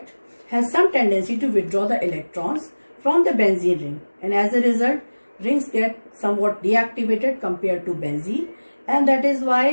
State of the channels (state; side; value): inverted; both; correlation -1.00